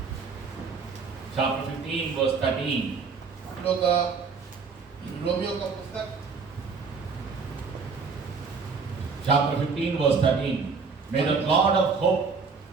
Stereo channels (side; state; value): left; quieter; 5.1 dB